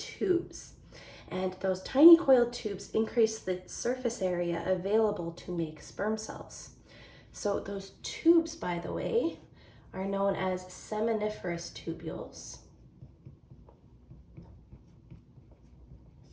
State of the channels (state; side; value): identical; both; correlation 1.00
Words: And those tiny coiled tubes increase the surface area available to make sperm cells. So those tubes, by the way, are known as seminiferous tubules.